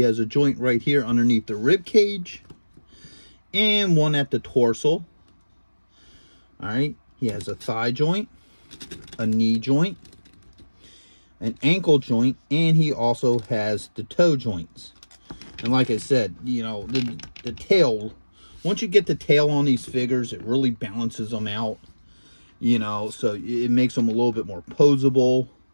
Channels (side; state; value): both; inverted; correlation -1.00